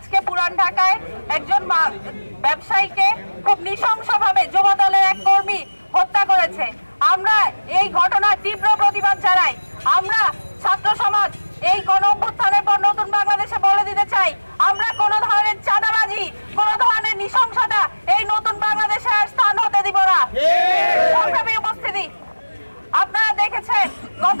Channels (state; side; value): inverted; both; correlation -1.00